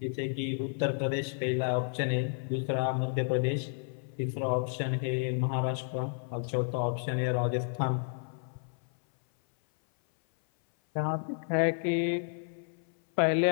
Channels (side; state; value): right; silent; 57 dB below the other